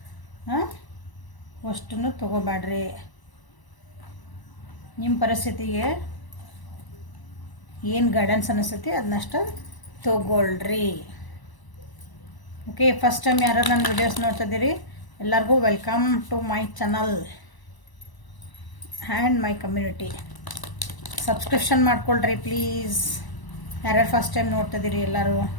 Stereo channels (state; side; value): late; right; 1.0 ms